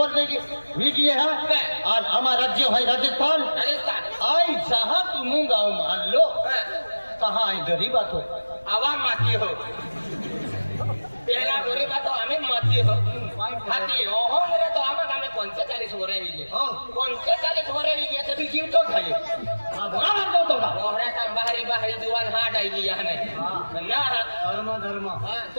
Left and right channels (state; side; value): inverted; both; correlation -1.00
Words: वीडियो है आज हमारा राज्य है राजस्थान आई जहाँ तुम गाँव मान लो कहाँ आई गरीब बात हो आवा माती हो पहला गरीब बात हमें माती हो हाथी ओहो मेरे तो आमा हमें 45 हो रहे हैं 45 हो रहे हैं तो भी जीव तो खाए बड़ा मानता तो का ओहरे का बाहरी बाहरी दुकान हाट आई गया है ना धर्म धर्म हां